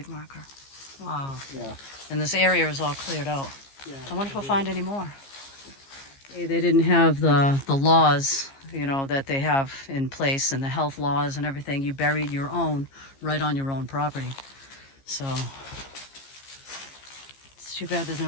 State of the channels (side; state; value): right; late; 15 ms